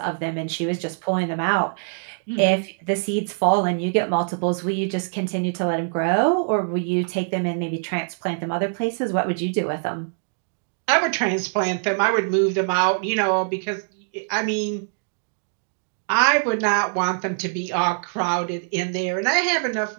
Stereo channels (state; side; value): silent; left; digital silence